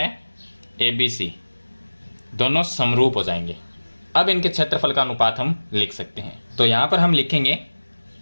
ABC, दोनों समरूप हो जाएंगे। अब इनके क्षेत्रफल का अनुपात हम लिख सकते हैं। तो यहाँ पर हम लिखेंगे,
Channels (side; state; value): both; inverted; correlation -1.00